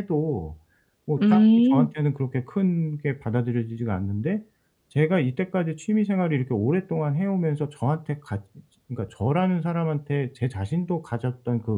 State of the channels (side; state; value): both; identical; correlation 1.00